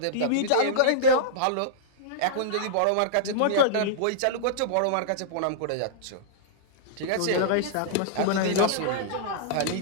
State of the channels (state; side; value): different; both; correlation -0.02